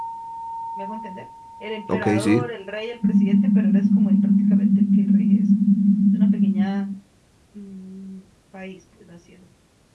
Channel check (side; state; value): both; identical; correlation 1.00